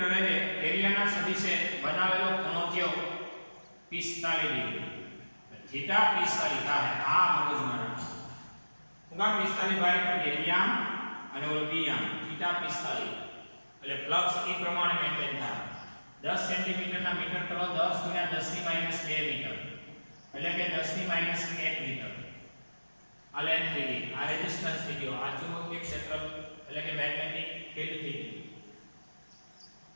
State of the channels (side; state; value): both; inverted; correlation -1.00